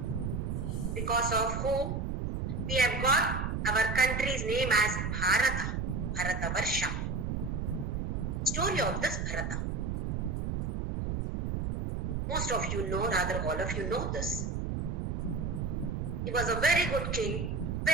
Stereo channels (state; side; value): noise; right; rumble, 2 dB below the sound